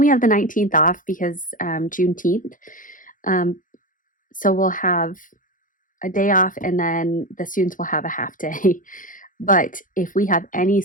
have the 19th off because Juneteenth. So we'll have a day off and then the students will have a half day. But if we have any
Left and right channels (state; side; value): late; right; 0.39 ms